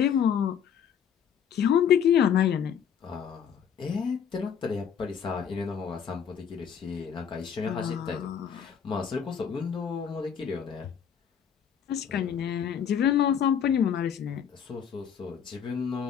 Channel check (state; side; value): quieter; right; 8.0 dB